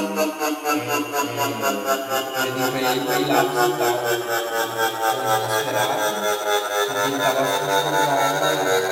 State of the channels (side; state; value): both; identical; correlation 1.00